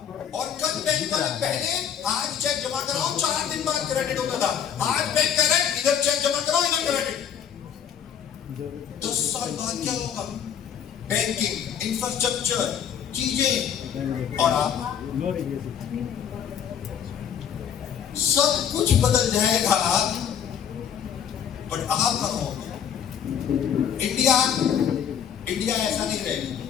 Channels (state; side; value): quieter; right; 8.6 dB